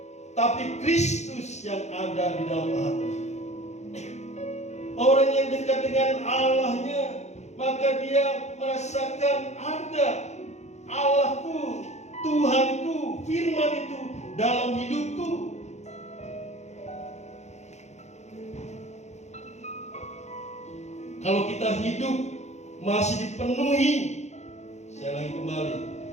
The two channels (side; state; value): right; late; 0.33 ms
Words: tapi Kristus yang ada di dalam hati? Orang yang dekat dengan Allahnya, maka dia merasakan ada Allahku, Tuhanku, firman itu dalam hidupku. Kalau kita hidup masih dipenuhi, saya lagi kembali,